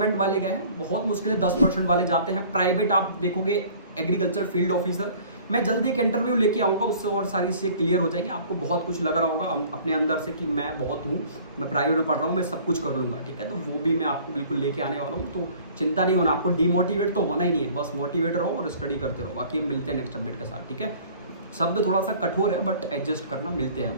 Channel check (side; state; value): both; inverted; correlation -0.50